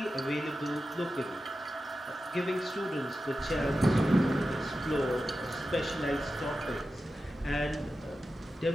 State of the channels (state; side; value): normal; both; correlation 0.92